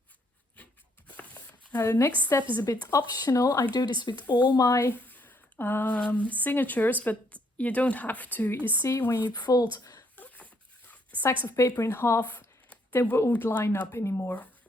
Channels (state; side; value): normal; both; correlation 0.70